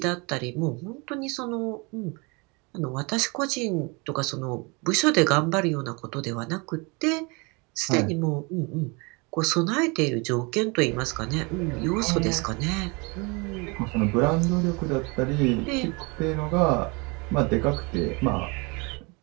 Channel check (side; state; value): left; quieter; 29.0 dB